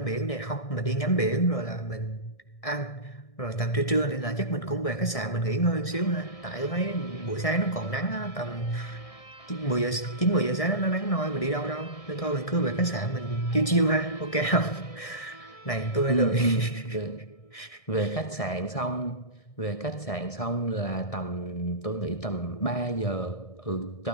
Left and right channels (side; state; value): right; late; 1.6 ms